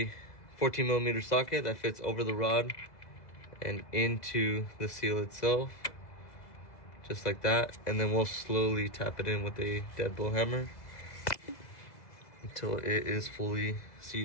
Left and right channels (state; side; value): late; right; 2.0 ms